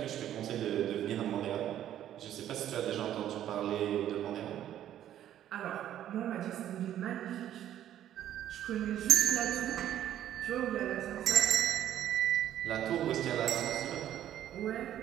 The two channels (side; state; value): left; quieter; 11.5 dB